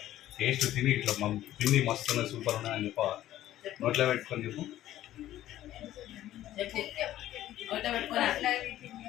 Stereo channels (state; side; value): quieter; right; 13.5 dB